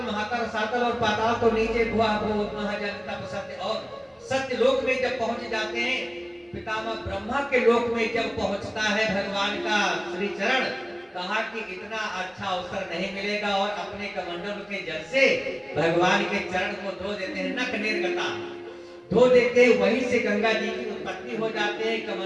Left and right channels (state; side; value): identical; both; correlation 1.00